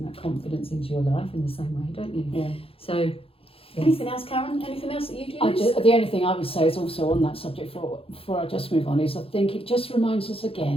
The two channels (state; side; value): late; right; 0.27 ms